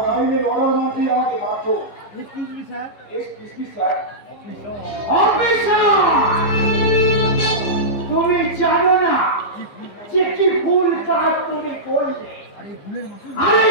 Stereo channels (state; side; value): late; right; 15 ms